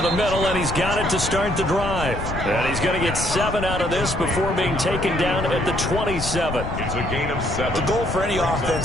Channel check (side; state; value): left; noise; rumble, 6 dB below the sound